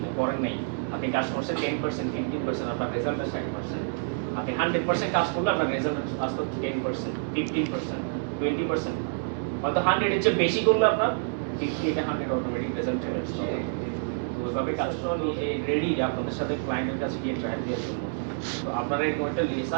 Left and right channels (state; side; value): silent; left; 60 dB below the other